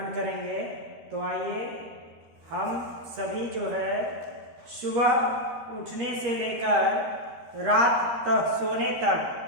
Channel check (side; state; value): left; late; 13 ms